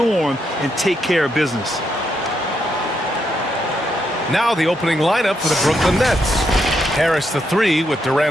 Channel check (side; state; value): both; normal; correlation 0.79